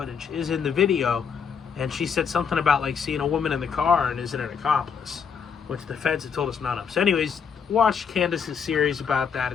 is in the video, and she said something about like seeing a woman in the car and isn't an accomplice, which the feds have told us none of. So anyways, watch Candace's series about that.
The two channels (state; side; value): quieter; right; 6.6 dB